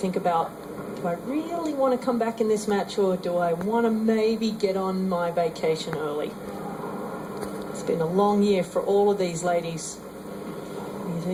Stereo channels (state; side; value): identical; both; correlation 1.00